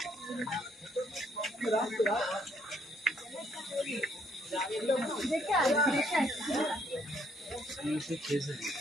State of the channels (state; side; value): normal; both; correlation 0.68